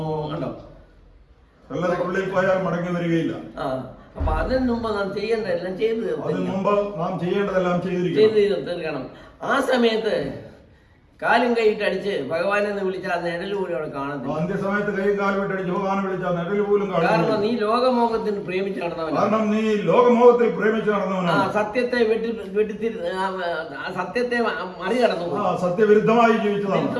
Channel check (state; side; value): identical; both; correlation 1.00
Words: കണ്ടോ? കല്ലറയ്ക്കുള്ളിൽ പോയാൽ മടങ്ങി വരികയില്ല. അപ്പൊ അതിന് മുമ്പ് നാം ചെയ്യേണ്ടതെല്ലാം ചെയ്ത് തീർക്കണം. ആ സമയത്ത് കാലും കൈയിട്ട് അടിച്ച് ഭഗവാനെ വിളിച്ചാൽ നിഴല് പോലും അവിടെ കാണത്തില്ല. അന്ത്യസമയത്ത് കൈയും കാലും ഇട്ടടിച്ച് ഭഗവാനെ വിളിച്ചാൽ നിഴല് പോലും കാണത്തില്ല. കാരണം നീ ലോകമോഹത്തിന് പ്രേമിച്ച് നടന്നവനാണ്. സത്യത്തെ സത്യത്തെ മറികടന്നു പോയി. സത്യവിരുദ്ധമായി